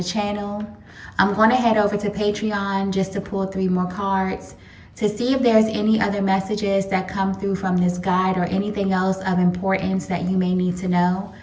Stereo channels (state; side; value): identical; both; correlation 1.00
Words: channel. I'm going to head over to Patreon just to pull 3 more cards to see if there's any other messages that come through from this guide or anything else of importance that you may need to know.